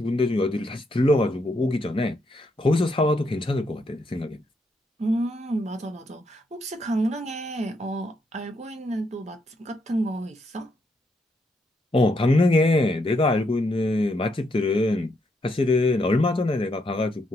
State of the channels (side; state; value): both; normal; correlation 0.77